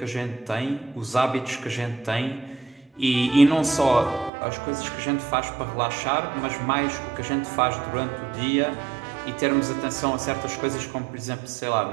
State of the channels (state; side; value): drops out; left; at 4.3 s